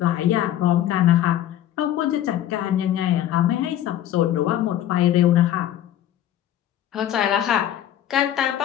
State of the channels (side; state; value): right; quieter; 11.7 dB